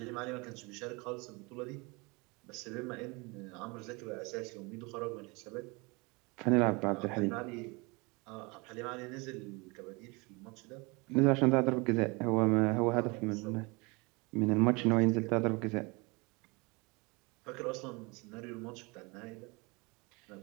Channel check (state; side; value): quieter; left; 27.4 dB